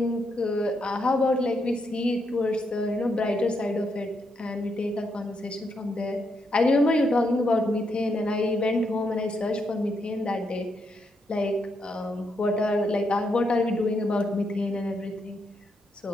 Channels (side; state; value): both; normal; correlation 0.80